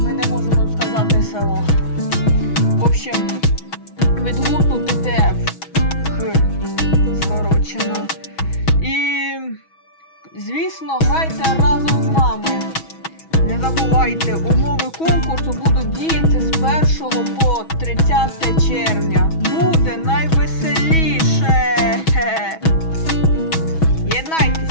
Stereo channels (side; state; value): right; late; 6.2 ms